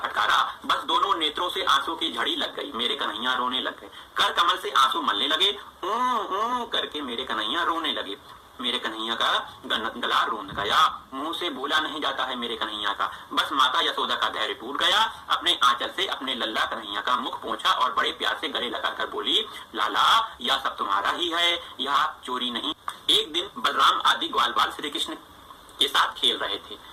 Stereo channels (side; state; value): both; identical; correlation 1.00